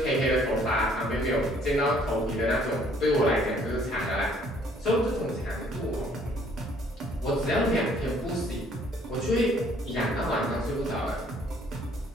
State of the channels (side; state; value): both; normal; correlation 0.61